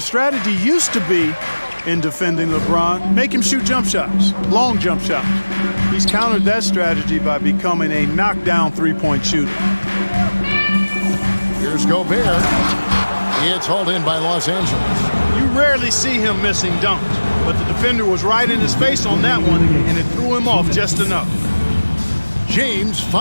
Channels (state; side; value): inverted; both; correlation -1.00